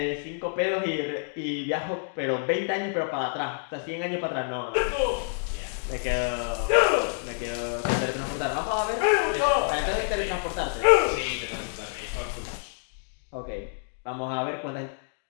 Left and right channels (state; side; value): silent; right; digital silence